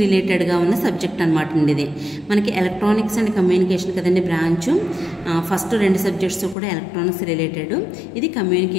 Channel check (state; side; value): drops out; right; at 6.6 s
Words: రిలేటెడ్గా ఉన్న సబ్జెక్ట్ అనమాట అండి. ఇది మనకి ఎలక్ట్రానిక్స్ అండ్ కమ్యూనికేషన్ కదండి బ్రాంచ్. ఫస్ట్ 2 సబ్జెక్ట్స్ కూడా ఎలక్ట్రానిక్స్ రిలేటెడ్, ఇది